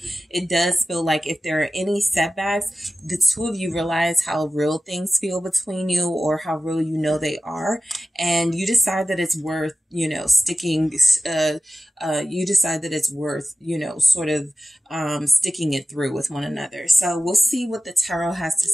it does feel like if there are any setbacks, the two of you realize how real things feel between you, or how real they are, and you decide that it's worth, sticking, you decide that it's worth, sort of sticking it through with one another. So we'll see what the tarot has to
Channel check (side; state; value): both; normal; correlation 0.95